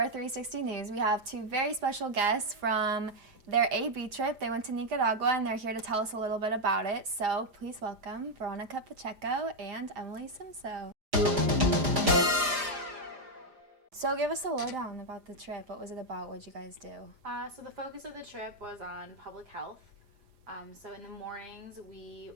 360 News, we have two very special guests from their AB trip. They went to Nicaragua and they're here to tell us a little bit about it. So please welcome Veronica Pacheco and Emily Simso. So give us a lowdown about the trip. What was it about? What did you guys do? So the focus of the trip was on public health. So in the mornings, we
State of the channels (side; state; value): left; late; 4.9 ms